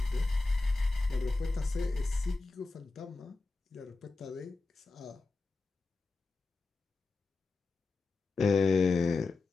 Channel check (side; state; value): right; quieter; 3.6 dB